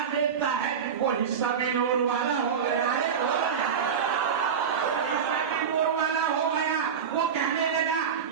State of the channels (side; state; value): left; quieter; 7.1 dB